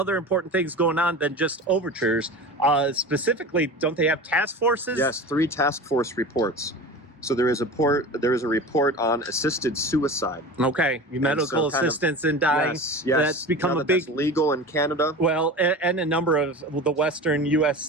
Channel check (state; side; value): normal; both; correlation 0.33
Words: important things going on than just overtures. Specifically, don't they have task forces? Yes, 3 task force reports. So there is a report on assisted suicide. Okay, medical assistance in dying. Yes, that's become a big that's legal in Canada. Well, and a number of the Western